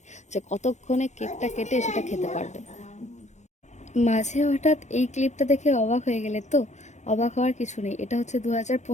যে কতক্ষণে কেকটা কেটে সেটা খেতে পারবে। মাঝে হঠাৎ এই ক্লিপটা দেখে অবাক হয়ে গেলে তো? অবাক হওয়ার কিছু নেই, এটা হচ্ছে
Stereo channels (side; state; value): right; late; 0.34 ms